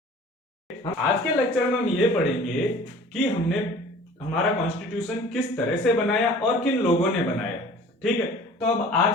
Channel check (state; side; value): normal; both; correlation 0.46